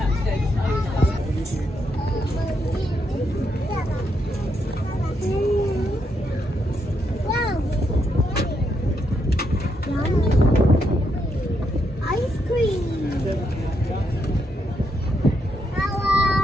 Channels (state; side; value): normal; both; correlation 0.79